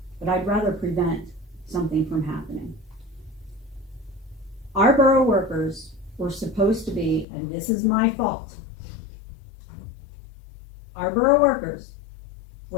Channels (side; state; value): right; drops out; at 7.2 s